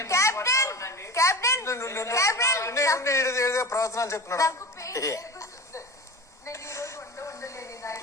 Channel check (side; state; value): both; normal; correlation 0.31